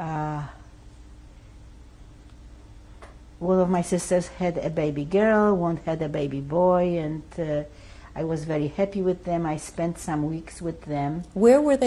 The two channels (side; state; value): both; identical; correlation 1.00